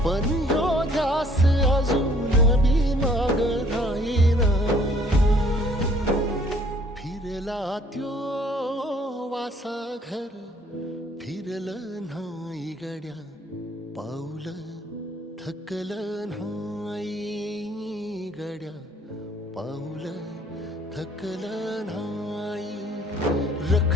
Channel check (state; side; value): normal; both; correlation 0.59